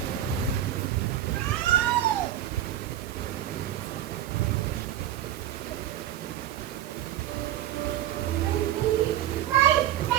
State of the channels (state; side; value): quieter; left; 12.0 dB